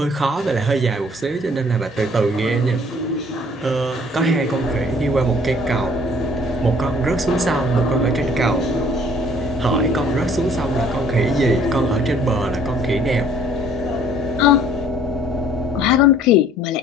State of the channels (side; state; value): both; normal; correlation 0.56